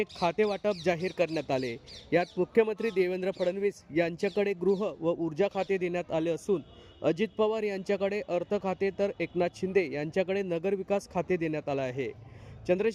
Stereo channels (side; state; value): both; identical; correlation 1.00